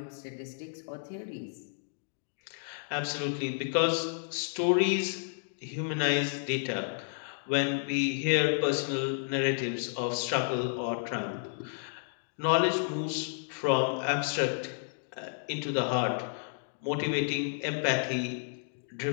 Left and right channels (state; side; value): silent; right; digital silence